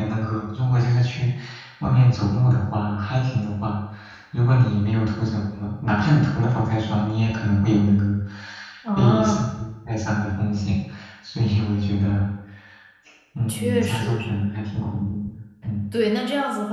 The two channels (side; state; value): both; identical; correlation 1.00